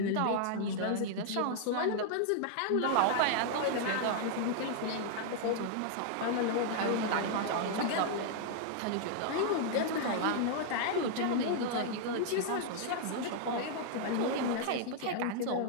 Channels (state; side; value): different; both; correlation 0.00